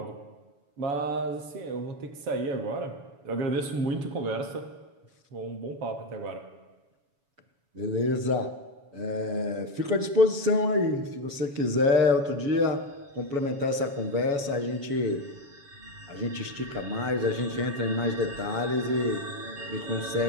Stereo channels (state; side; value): late; left; 7.1 ms